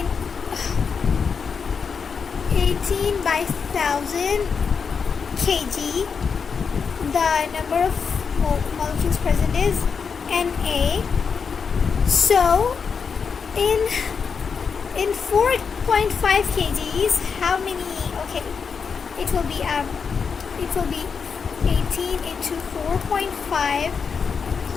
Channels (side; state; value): right; quieter; 5.9 dB